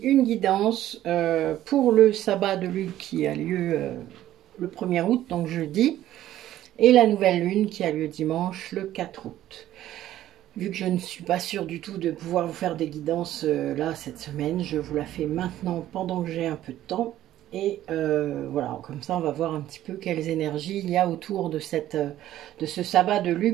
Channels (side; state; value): left; quieter; 13.3 dB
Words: une guidance pour le sabbat de lune qui a lieu le 1er août, donc jeudi, et la nouvelle lune qui a lieu dimanche, le 4 août. Vu que je ne suis pas sûre du tout de pouvoir vous faire des guidances là cette semaine, je vous la fais maintenant pendant que j'ai un peu de temps. Et voilà, comme ça on va voir un petit peu quelles énergies il y a autour de ce sabbat de